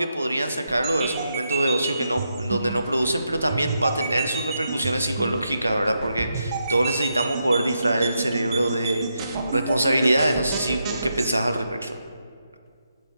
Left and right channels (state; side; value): inverted; both; correlation -0.83